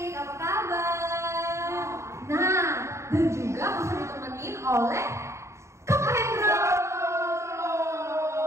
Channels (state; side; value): late; left; 0.14 ms